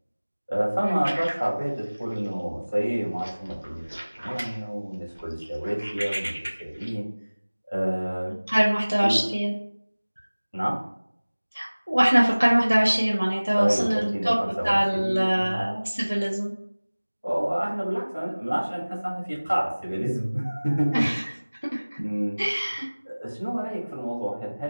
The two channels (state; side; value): inverted; both; correlation -1.00